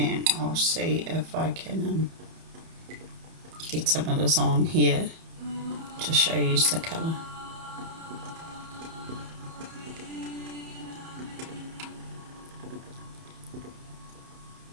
I'll see if I can get some of this on here to show you the colour.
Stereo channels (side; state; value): left; late; 31 ms